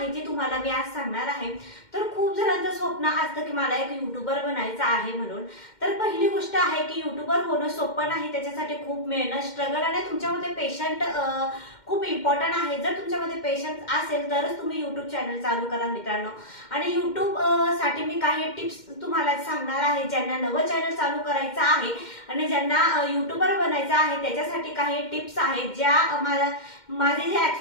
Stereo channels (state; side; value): late; right; 2.1 ms